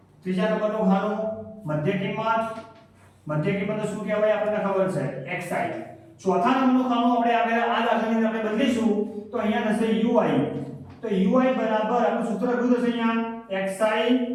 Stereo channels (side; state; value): both; identical; correlation 1.00